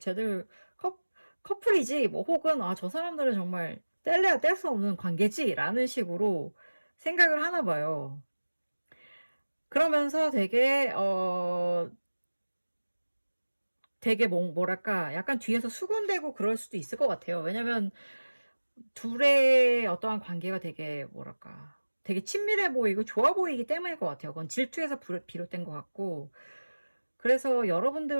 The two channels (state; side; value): inverted; both; correlation -1.00